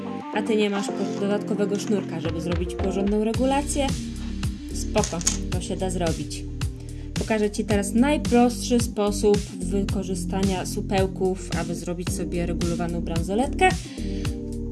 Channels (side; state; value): both; identical; correlation 1.00